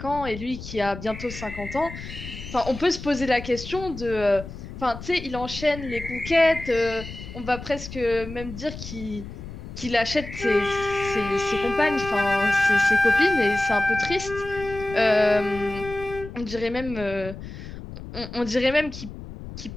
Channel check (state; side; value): noise; left; rumble, 11 dB below the sound